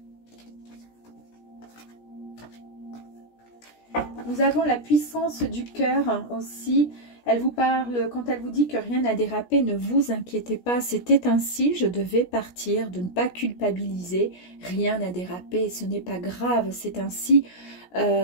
Nous avons la puissance du cœur aussi. Elle vous parle, quand elle vous dit que rien n'a dérapé, ne vous inquiétez pas. C'était ainsi, je devais partir, de ne pas culpabiliser. Rien n'a dérapé, ce n'est pas grave, c'est ainsi.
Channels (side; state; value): right; late; 17 ms